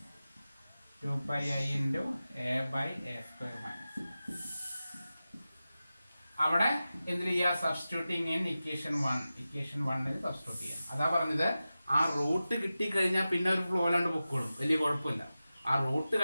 2 pi I into a by a square minus. അവിടെ എന്തിനു ചെയ്യുക? സബ്സ്റ്റിറ്റ്യൂട്ടിങ് ഇൻ ഇക്വേഷൻ 1 സബ്സ്റ്റിറ്റ്യൂട്ട് ചെയ്യാം. അതാ പറഞ്ഞത്, ആ റൂട്ട് കിട്ടിക്കഴിഞ്ഞാൽ പിന്നെ ഒരു ഫ്ലോ അല്ലാണ്ട് പൊക്കോളും, വലിയ കുഴപ്പമില്ല. ആ റൂട്ട്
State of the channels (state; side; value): inverted; both; correlation -0.94